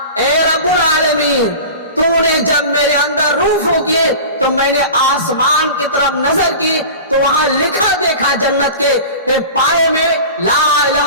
اے رب العالمین تو نے جب میرے اندر روح پھونکی تو میں نے آسمان کی طرف نظر کی تو وہاں لکھا دیکھا جنت کے پائے میں لا الہ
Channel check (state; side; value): inverted; both; correlation -0.35